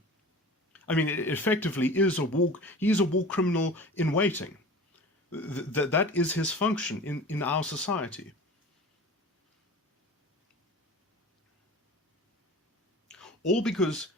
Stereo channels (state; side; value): normal; both; correlation 0.38